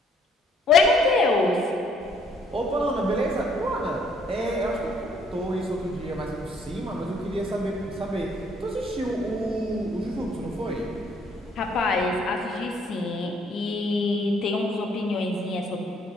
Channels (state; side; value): normal; both; correlation 0.64